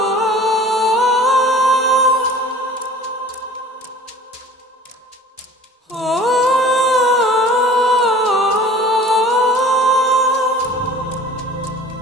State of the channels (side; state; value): both; normal; correlation 0.45